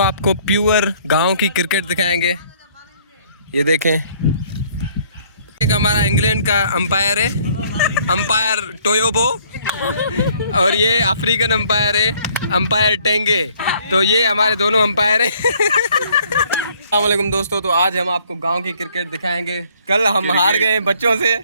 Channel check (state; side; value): inverted; both; correlation -0.61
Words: आपको प्योर गांव की क्रिकेट दिखाएंगे। ये देखें, एक हमारा इंग्लैंड का अंपायर है, अंपायर टोयोबो, और ये अफ्रीकन अंपायर है, अंपायर टेंगे। तो ये हमारे दोनों अंपायर हैं। अस्सलाम वालेकुम दोस्तों, तो आज हम आपको गांव की क्रिकेट दिखाएंगे। कल हम हार गए बच्चों से,